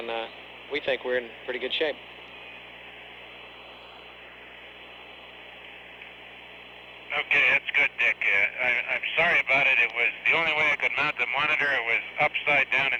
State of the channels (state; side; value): identical; both; correlation 1.00